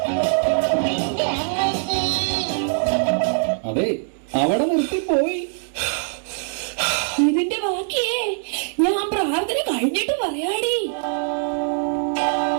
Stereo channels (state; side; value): silent; left; digital silence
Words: അതെ, അവിടെ നിർത്തിപ്പോയി. ഇതിന്റെ ബാക്കിയേ ഞാൻ പ്രാർത്ഥന കഴിഞ്ഞിട്ട് പറയാടി.